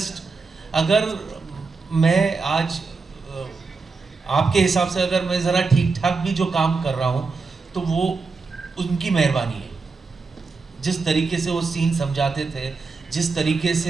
अगर मैं आज आपके हिसाब से अगर मैं ज़रा ठीक ठाक भी जो काम कर रहा हूँ तो वो उनकी मेहरबानी है. जिस तरीके से वो सीन समझाते थे, जिस तरीके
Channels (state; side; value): quieter; left; 4.4 dB